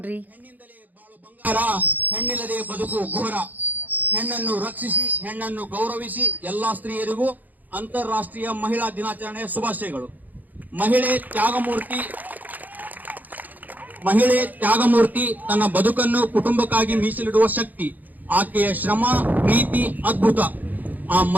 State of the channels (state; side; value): late; left; 0.083 ms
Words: ಹೆಣ್ಣಿಂದಲೇ ಬಾಳು ಬಂಗಾರ, ಹೆಣ್ಣಿಲ್ಲದೆ ಬದುಕು ಘೋರ. ಹೆಣ್ಣನ್ನು ರಕ್ಷಿಸಿ, ಹೆಣ್ಣನ್ನು ಗೌರವಿಸಿ ಎಲ್ಲಾ ಸ್ತ್ರೀಯರಿಗೂ ಅಂತಾರಾಷ್ಟ್ರೀಯ ಮಹಿಳಾ ದಿನಾಚರಣೆಯ ಶುಭಾಶಯಗಳು. ಮಹಿಳೆ ತ್ಯಾಗಮೂರ್ತಿ, ತನ್ನ ಬದುಕನ್ನು ಕುಟುಂಬಕ್ಕಾಗಿ ಮೀಸಲಿಡುವ ಶಕ್ತಿ. ಆಕೆಯ ಶ್ರಮ, ಪ್ರೀತಿ ಅದ್ಭುತ. ಆ